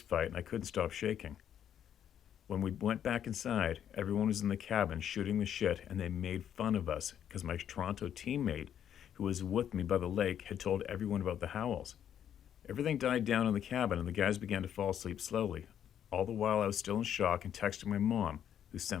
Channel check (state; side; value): quieter; right; 9.6 dB